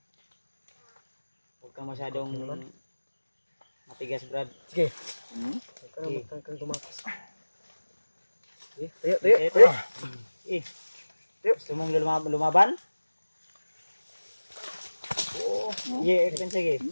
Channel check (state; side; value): inverted; both; correlation -1.00